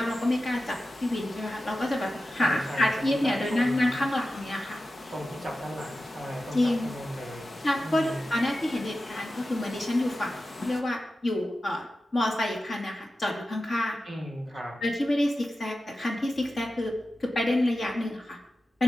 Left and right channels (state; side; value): normal; both; correlation 0.93